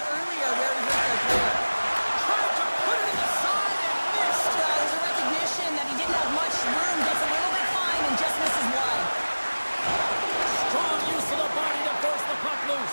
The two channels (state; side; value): inverted; both; correlation -1.00